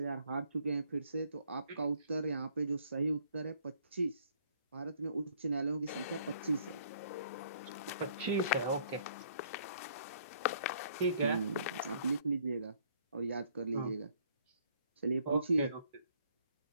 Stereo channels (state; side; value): inverted; both; correlation -0.63